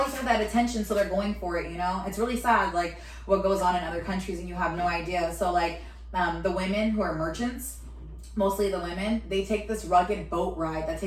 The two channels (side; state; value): both; identical; correlation 1.00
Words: I have that attention, so they're going for it. You know, it's really sad. Like what goes on in other countries and you have no idea. So like the women who are merchants, mostly the women, they take this rugged boat ride that